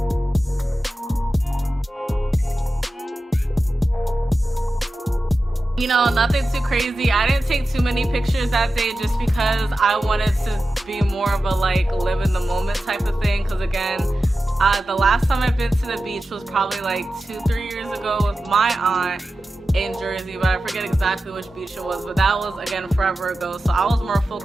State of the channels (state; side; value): normal; both; correlation 0.93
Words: You know, nothing too crazy. I didn't take too many pictures that day just because I wanted to be more of a like live in the moment type of thing. Because again, the last time I've been to the beach was probably like 2-3 years ago with my aunt in Jersey, but I forget exactly which beach it was, but that was again forever ago. So I was more